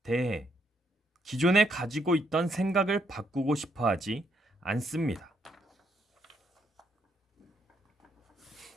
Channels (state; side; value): normal; both; correlation 0.75